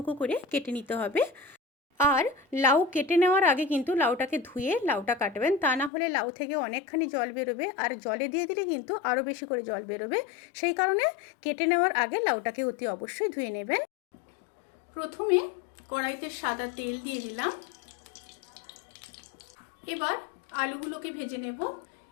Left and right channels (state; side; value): drops out; right; at 5.9 s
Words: করে কেটে নিতে হবে। আর লাউ কেটে নেওয়ার আগে কিন্তু লাউটাকে ধুয়ে লাউটা কাটবেন, তা না হলে লাউ থেকে অনেকখানি জল বেরোবে, আর জলে দিয়ে দিলে কিন্তু আরও বেশি করে জল বেরোবে। সেই কারণে কেটে নেওয়ার আগে লাউটাকে অতি অবশ্যই ধুয়ে নেবেন। প্রথমে কড়াইতে সাদা তেল দিয়ে দিলাম। এবার আলুগুলোকে ভেজে নেব।